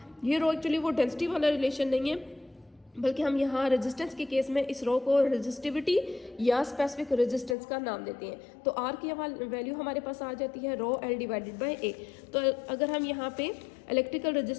ये रो एक्चुअली वो डेंसिटी वाला रिलेशन नहीं है बल्कि हम यहाँ रेजिस्टेंस के केस में इस रो को रेजिस्टिविटी या स्पेसिफिक रेजिस्टेंस का नाम देते हैं। तो R की वैल्यू हमारे पास आ जाती है रो L डिवाइडेड बाय A। तो अगर हम यहाँ पे इलेक्ट्रिकल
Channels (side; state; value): right; drops out; at 7.6 s